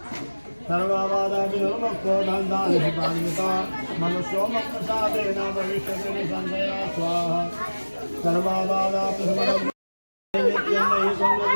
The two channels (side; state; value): both; inverted; correlation -1.00